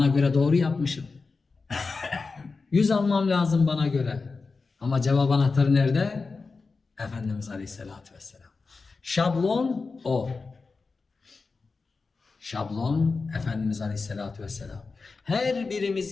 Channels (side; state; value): right; quieter; 4.3 dB